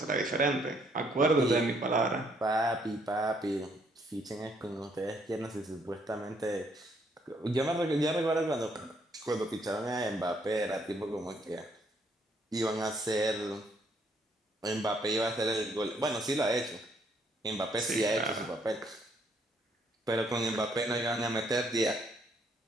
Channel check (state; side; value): normal; both; correlation 0.69